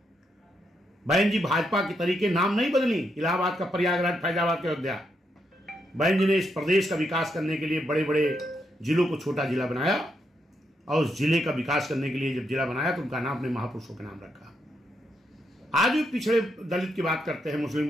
बहन जी भाजपा के तरीके नाम नहीं बदली, इलाहाबाद का प्रयागराज, फैजाबाद का अयोध्या। बहन जी ने इस प्रदेश का विकास करने के लिए बड़े बड़े जिलों को छोटा जिला बनाया, और उस जिले का विकास करने के लिए जब जिला बनाया तो उनका नाम अपने महापुरुषों के नाम रखा। आज भी पिछड़े दलित की बात करते हैं, मुस्लिम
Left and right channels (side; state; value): both; normal; correlation 0.80